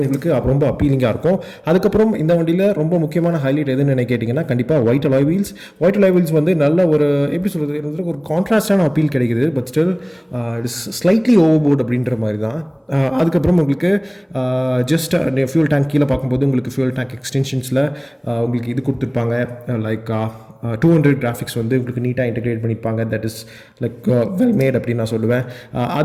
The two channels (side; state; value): both; identical; correlation 1.00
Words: உங்களுக்கு ரொம்ப அப்பீலிங்காக இருக்கும். அதுக்கப்புறம் இந்த வண்டியில் ரொம்ப முக்கியமான ஹைலைட் எதுன்னு கேட்டிங்கன்னா கண்டிப்பாக white alloy wheels. White alloy wheels வந்து நல்ல ஒரு எப்படி சொல்கிறது, ஒரு கான்ட்ராஸ்டான அப்பீல் கிடைக்குது. But still it is slightly overboard அப்படின்ற மாதிரி தான். அதுக்கப்புறம் உங்களுக்கு ஜஸ்ட் ஃபியூல் டேங்க் கீழே பார்க்கும்போது உங்களுக்கு ஃபியூல் டேங்க் எக்ஸ்டென்ஷன்ஸில் உங்களுக்கு இது கொடுத்துருப்பாங்க, லைக் 200 கிராஃபிக்ஸ் வந்து உங்களுக்கு நீட்டாக இன்டெகிரேட் பண்ணியிருப்பாங்க. That is like well made அப்படின்னு நான் சொல்லுவேன்.